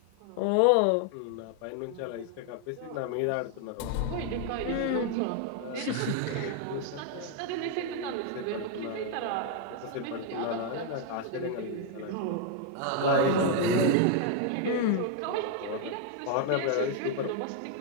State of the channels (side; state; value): both; different; correlation 0.00